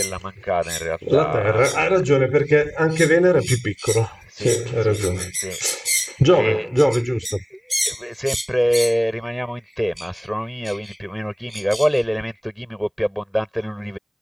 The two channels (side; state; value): both; identical; correlation 1.00